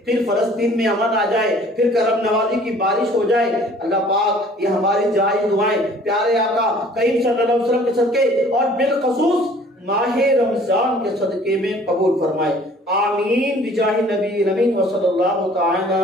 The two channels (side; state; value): both; normal; correlation 0.53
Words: फिर फलस्तीन में अमन आ जाए, फिर करम नवाजी की बारिश हो जाए। अल्लाह पाक ये हमारी जायज दुआएं प्यारे आका करीम सल्लल्लाहु अलैहि वसल्लम के सदके और बिलखसूस माह रमजान के सदके में कबूल फरमाए। आमीन बिजाहि नबी नबी व सल्लल्लाहु तआला